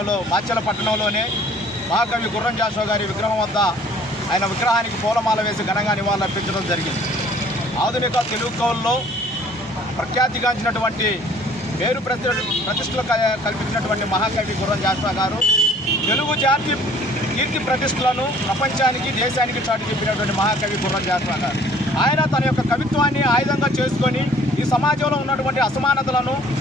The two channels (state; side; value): normal; both; correlation 0.54